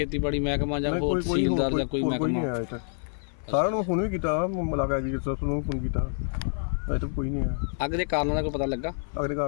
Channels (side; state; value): right; silent; 56 dB below the other